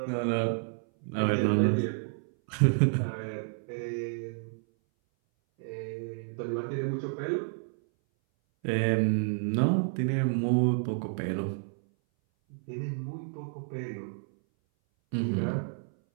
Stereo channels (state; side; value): silent; left; 58 dB below the other